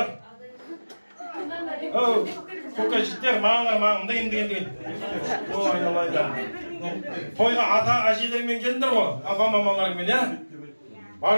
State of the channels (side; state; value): both; inverted; correlation -1.00